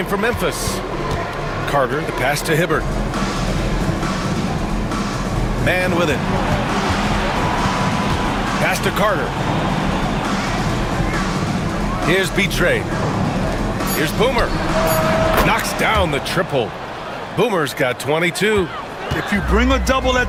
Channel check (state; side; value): identical; both; correlation 1.00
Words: for Memphis. Carter, the pass to Hibbert. Man with it. Pass to Carter. Here's Betrayed. Here's Boomer. Knocks down the triple. Boomer's got 22. If you bring a double